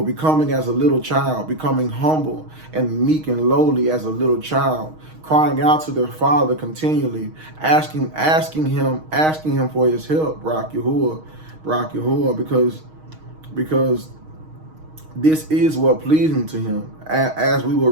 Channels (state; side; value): late; left; 6.4 ms